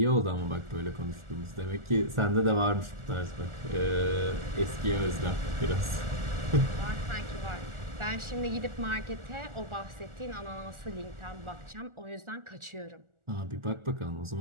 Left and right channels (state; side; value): late; left; 1.4 ms